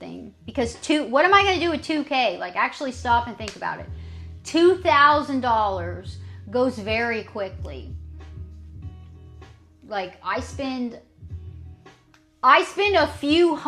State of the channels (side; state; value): both; identical; correlation 1.00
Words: Because what am I going to do with 2K? Like, actually stop and think about it. $2,000 goes very quickly. Like, I spend a few